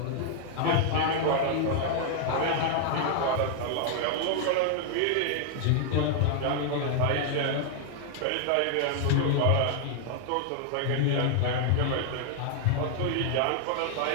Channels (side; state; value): both; different; correlation 0.00